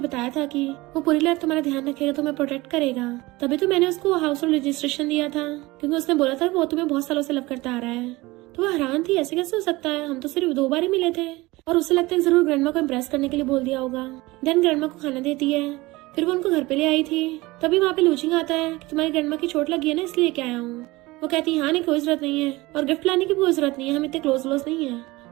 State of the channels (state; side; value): quieter; left; 20.9 dB